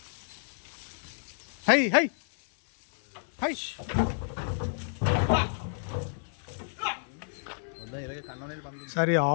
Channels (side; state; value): right; silent; 58 dB below the other